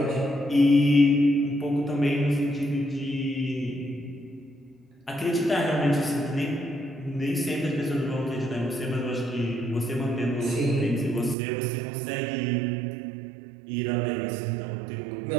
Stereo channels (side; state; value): left; drops out; at 11.4 s